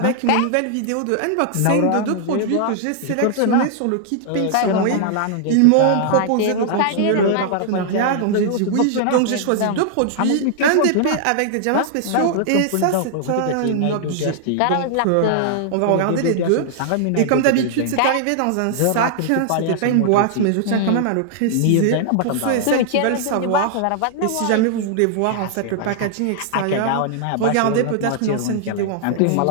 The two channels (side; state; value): both; different; correlation -0.01